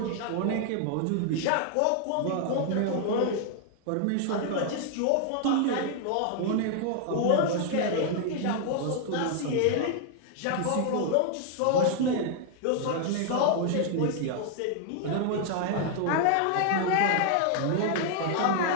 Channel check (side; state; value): both; different; correlation 0.00